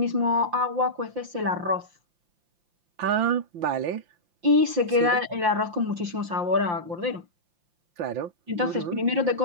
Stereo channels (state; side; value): late; left; 5.7 ms